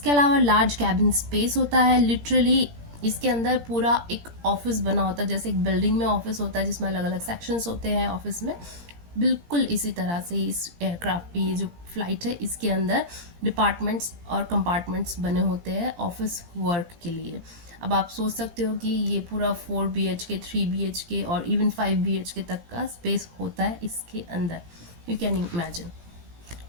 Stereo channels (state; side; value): late; left; 17 ms